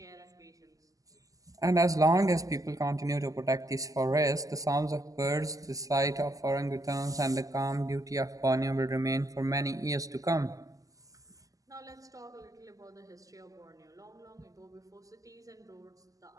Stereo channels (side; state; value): left; late; 0.17 ms